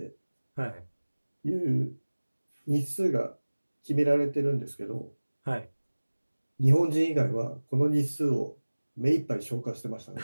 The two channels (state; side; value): inverted; both; correlation -1.00